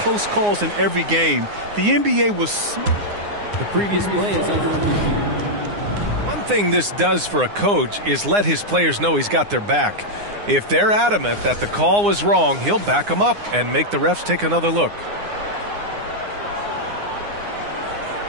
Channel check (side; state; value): left; late; 9.7 ms